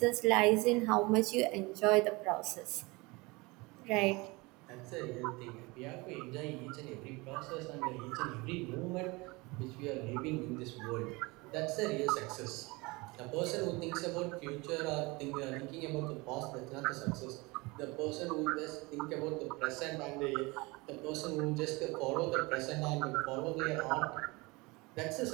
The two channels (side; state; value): left; quieter; 24.6 dB